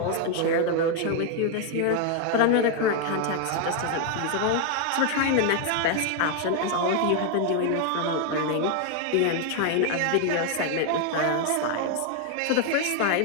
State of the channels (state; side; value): different; both; correlation 0.00